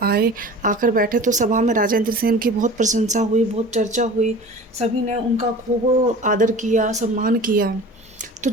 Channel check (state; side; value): normal; both; correlation 0.40